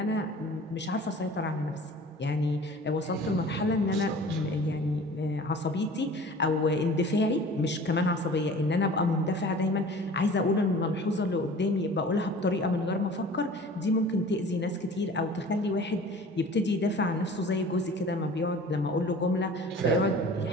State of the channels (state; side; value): normal; both; correlation 0.43